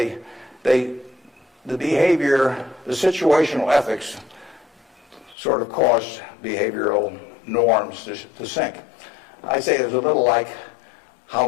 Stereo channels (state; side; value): drops out; right; at 5.4 s